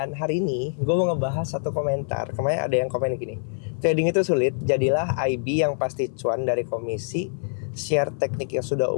hari ini gue mau ngebahas satu komentar. Kemarin ada yang komen gini. Trading itu sulit, jadilah IB yang pasti cuan dari komisi. Share teknik yang sudah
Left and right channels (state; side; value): silent; right; 62 dB below the other